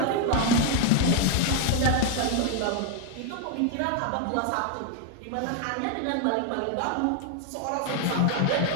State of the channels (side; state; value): both; different; correlation 0.00